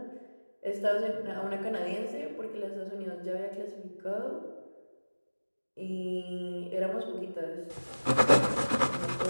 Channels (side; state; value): both; inverted; correlation -1.00